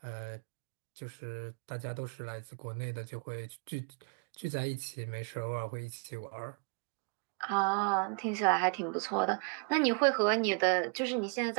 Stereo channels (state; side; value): quieter; left; 37.8 dB